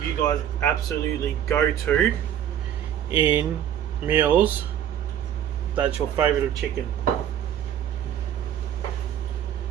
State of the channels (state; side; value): quieter; left; 10.2 dB